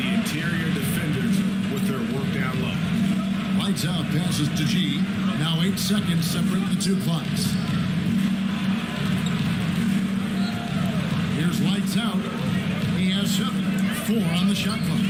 interior defenders with their work down low. Lights out, passes to G. Now 8 seconds separate the two clocks. Here's lights out. He has 7. 4 on the shot clock.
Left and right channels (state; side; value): identical; both; correlation 1.00